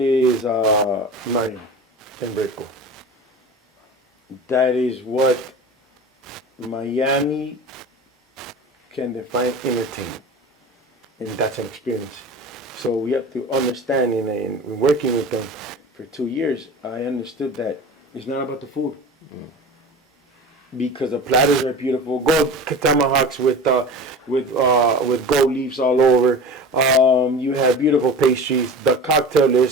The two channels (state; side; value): normal; both; correlation 0.34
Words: Mario Enrico. That is what Miami can define entertainment, and that's an experience. So we have to understand, in working with them for 2 years, I understood that it's not about the food. Because the platters are beautiful, gold tomahawks with gold leaves all over. You have beautiful pastries. The cocktail